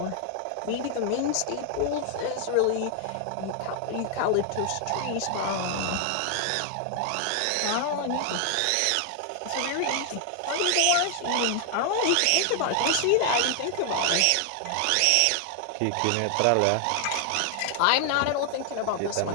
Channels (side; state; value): both; different; correlation 0.00